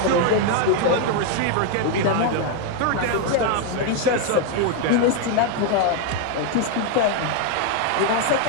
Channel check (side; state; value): both; different; correlation 0.01